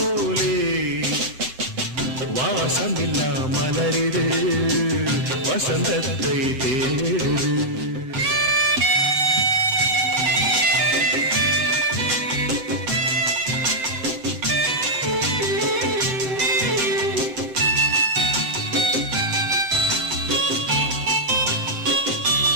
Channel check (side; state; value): left; late; 7.7 ms